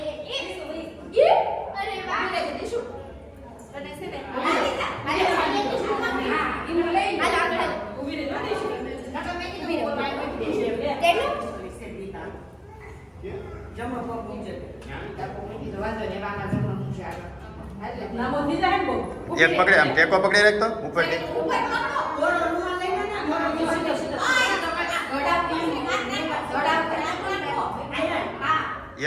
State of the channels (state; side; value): identical; both; correlation 1.00